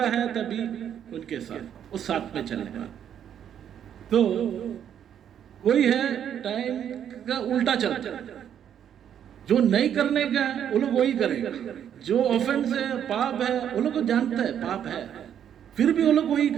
है तभी उनके साथ, वो साथ में चलने वाला। तो वही है टाइम का उल्टा चलता है, जो नहीं करने का है वो लोग वही करेगा, जो ऑफेंस है पाप है वो लोग को जानता है पाप है, फिर भी वो लोग वही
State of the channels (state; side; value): quieter; left; 9.3 dB